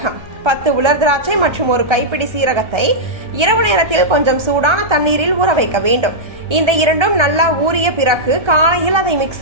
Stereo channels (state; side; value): late; left; 1.3 ms